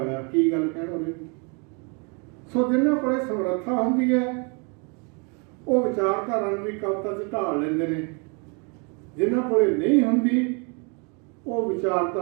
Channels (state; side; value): quieter; left; 34.4 dB